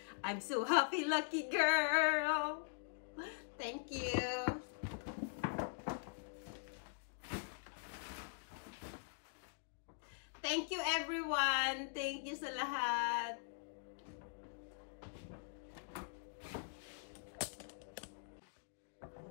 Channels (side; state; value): right; silent; digital silence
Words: I'm so happy, lucky girl. Thank you. Thank you everyone. Thank you sa lahat.